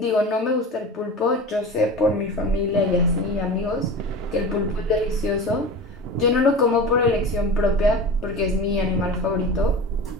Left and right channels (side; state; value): both; normal; correlation 0.31